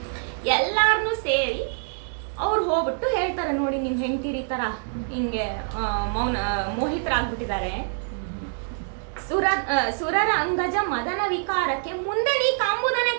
ಎಲ್ಲಾರನ್ನೂ ಸೇರಿ ಅವ್ರು ಹೋಗ್ಬಿಟ್ಟು ಹೇಳ್ತಾರೆ, ನೋಡಿ ನಿಮ್ಮ ಹೆಂಡ್ತೀರಿ ಥರ ಹಿಂಗೆ ಮೋಹಿತರಾಗ್ಬಿಟ್ಟಿದ್ದಾರೆ. ಸುರರ ಅಂಗಜ ಮದನ ವಿಕಾರಕ್ಕೆ ಮುಂದೆ ನೀ ಕಾಂಬುದನೇ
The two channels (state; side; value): silent; left; digital silence